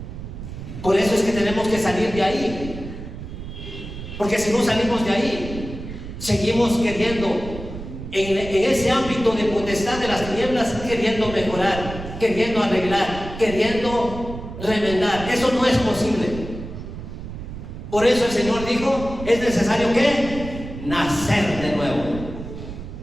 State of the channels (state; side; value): noise; right; rumble, 10 dB below the sound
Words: Por eso es que tenemos que salir de ahí. Porque si no salimos de ahí, seguimos queriendo, en ese ámbito de potestad de las tinieblas, queriendo mejorar, queriendo arreglar, queriendo remendar. Eso no es posible. Por eso el Señor dijo, es necesario que nacer de nuevo.